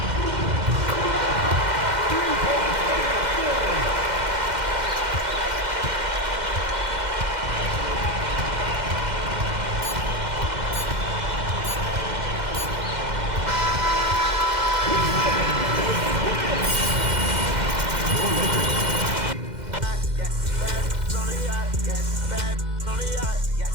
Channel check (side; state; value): left; late; 2.1 ms